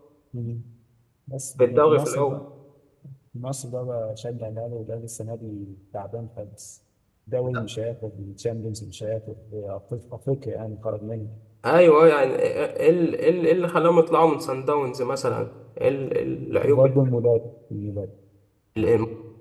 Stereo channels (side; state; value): both; identical; correlation 1.00